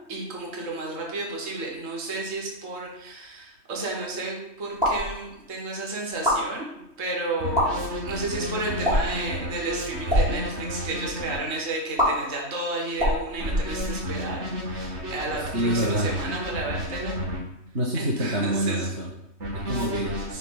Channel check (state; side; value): late; left; 3.2 ms